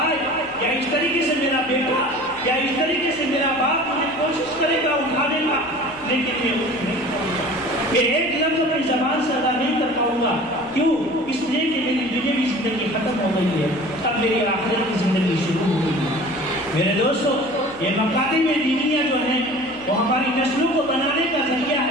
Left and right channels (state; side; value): noise; left; hum, 21 dB below the sound